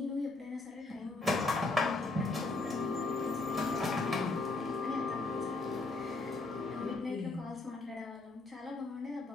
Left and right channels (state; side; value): quieter; right; 3.3 dB